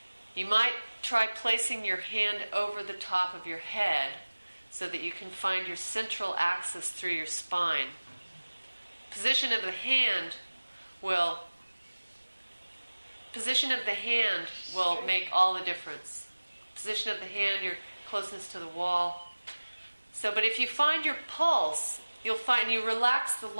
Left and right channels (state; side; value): inverted; both; correlation -1.00